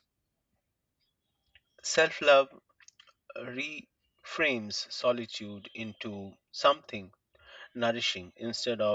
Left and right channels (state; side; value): identical; both; correlation 1.00